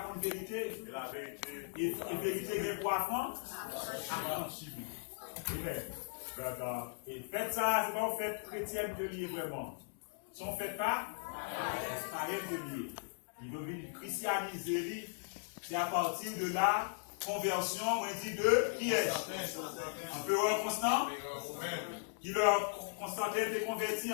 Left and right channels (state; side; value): silent; right; digital silence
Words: vérité. Et la vérité. Et vérité est poisson. Amen. Et faites ça, c'est pas une fête chrétienne de lier vraiment. Si on ne fait pas, c'est pas de lier. Il veut venir christianiser, c'est à partir de là conversion, on dit de qui est empereur Constant, qui leur Constantin était